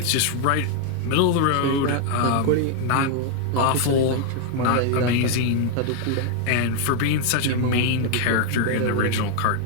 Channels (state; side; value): different; both; correlation 0.00